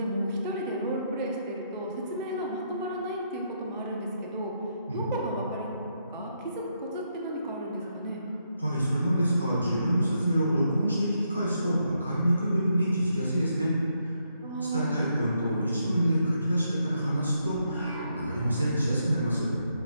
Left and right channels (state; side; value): inverted; both; correlation -0.78